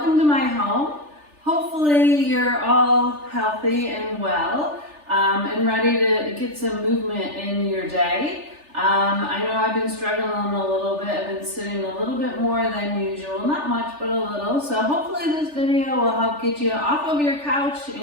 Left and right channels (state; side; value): late; left; 3.4 ms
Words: to my home. Hopefully you're all healthy and well and ready to get some movement in your day. I know I've been struggling a little bit. I've been sitting a little bit more than usual, not much but a little. So hopefully this video will help get you off of your couch